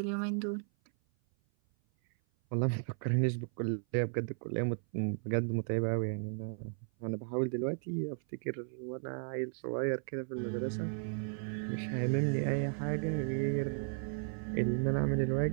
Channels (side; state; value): left; silent; 54 dB below the other